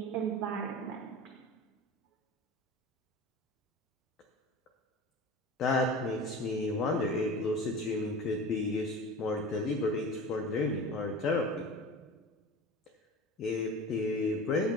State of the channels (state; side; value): normal; both; correlation 0.34